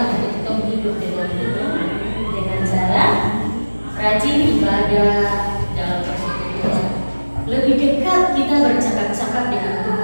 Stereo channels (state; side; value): inverted; both; correlation -1.00